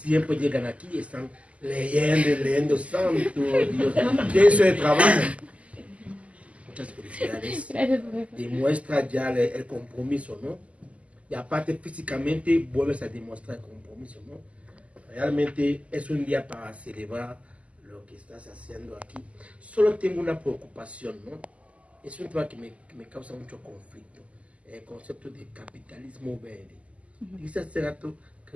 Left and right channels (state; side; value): late; left; 0.065 ms